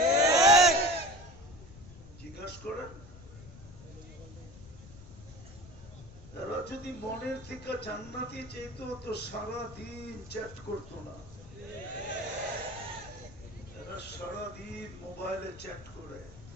জিজ্ঞাসা করেন, এরা যদি মনের থেকে জান্নাতি চাইত তো সারাদিন চ্যাট করতো না। এরা সারাদিন মোবাইলে চ্যাট করে,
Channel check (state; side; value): noise; left; rumble, 18 dB below the sound